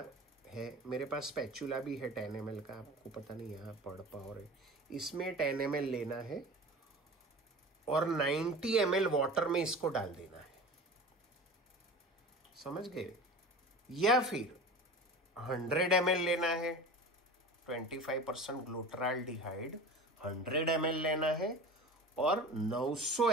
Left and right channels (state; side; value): normal; both; correlation 0.36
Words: है, मेरे पास स्पैचुला भी है 10 ml का, आपको पता नहीं यहाँ पढ़ पाओ रहे। इसमें 10 ml लेना है और 90 ml वाटर में इसको डाल देना है, समझ गए? या फिर 100 ml लेना है, 25% ग्लूट्राल्डिहाइड 100 ml लेना है और 900